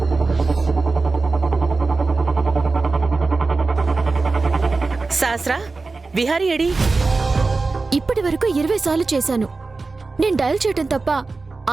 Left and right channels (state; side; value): quieter; left; 3.8 dB